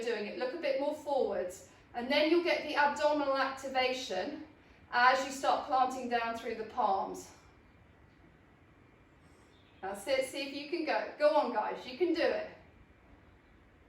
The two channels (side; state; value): both; identical; correlation 1.00